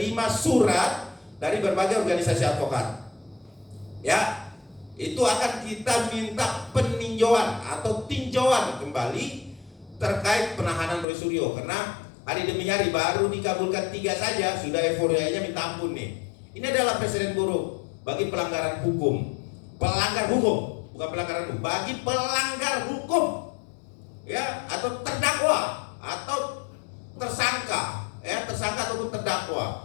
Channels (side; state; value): right; drops out; at 11.1 s